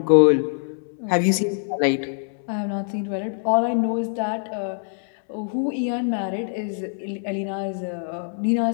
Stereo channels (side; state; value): right; silent; 63 dB below the other